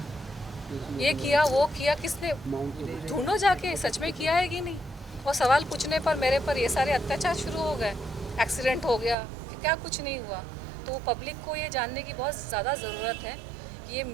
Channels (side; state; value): left; drops out; at 9.2 s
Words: ये किया वो किया, किसने? ढूंढो जाके, सच में किया है कि नहीं। और सवाल पूछने पर मेरे पर ये सारे अत्याचार शुरू हो गए, एक्सीडेंट हो गया, क्या कुछ नहीं हुआ। तो पब्लिक को ये जानने की बहुत ज़्यादा ज़रूरत है कि ये